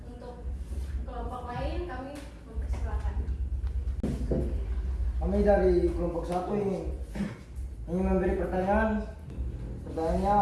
Untuk kelompok lain kami mempersilakan. Kami dari kelompok 1 ingin memberi pertanyaan. Pertanyaannya,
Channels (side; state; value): both; identical; correlation 1.00